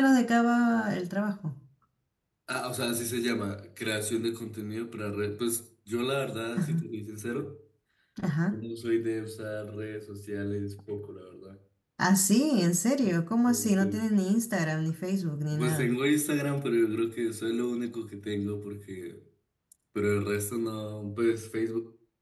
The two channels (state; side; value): identical; both; correlation 1.00